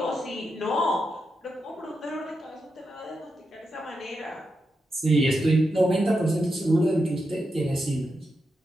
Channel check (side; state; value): both; normal; correlation 0.86